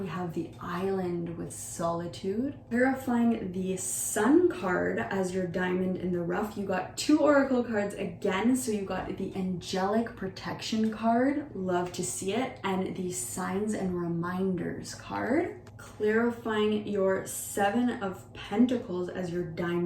have the Island with Solitude. Clarifying the Sun card as your diamond in the rough, you got 2 oracle cards again. So you got the Angelic Protection card, love to see it, and the Signs and Reminders card. Clarifying your 7 of Pentacles as your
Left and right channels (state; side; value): identical; both; correlation 1.00